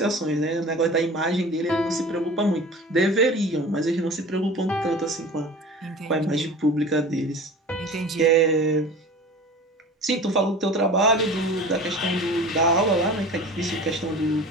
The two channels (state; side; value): normal; both; correlation 0.38